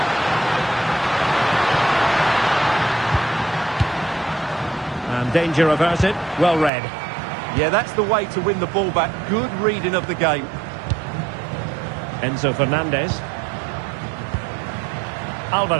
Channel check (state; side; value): drops out; left; at 6.7 s